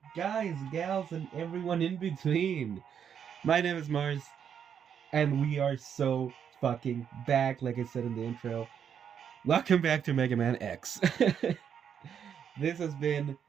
guys, gals, and everyone in between. My name is Mars, and we are so fucking back, like I said in the intro. Welcome back to Mega Man X. This has been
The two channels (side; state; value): left; quieter; 8.0 dB